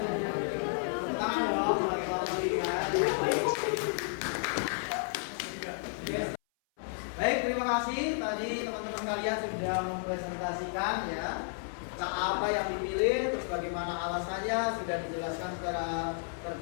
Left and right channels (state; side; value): silent; right; 56 dB below the other